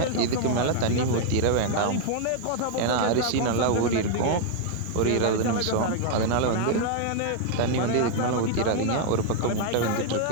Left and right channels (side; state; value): both; different; correlation 0.00